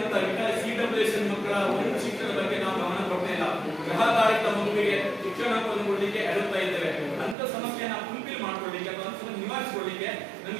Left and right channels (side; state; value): left; drops out; at 7.4 s